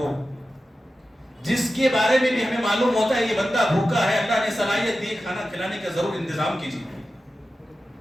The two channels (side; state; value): both; normal; correlation 0.93